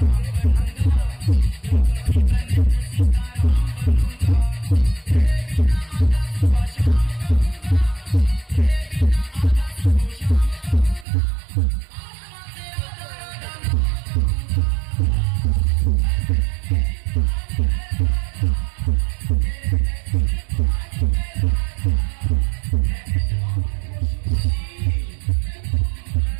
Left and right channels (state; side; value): drops out; left; at 11.1 s